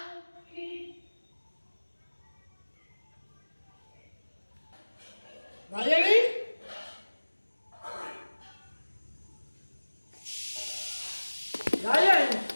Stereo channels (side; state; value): both; inverted; correlation -1.00